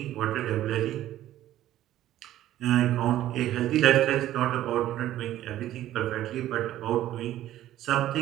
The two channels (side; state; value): left; quieter; 13.4 dB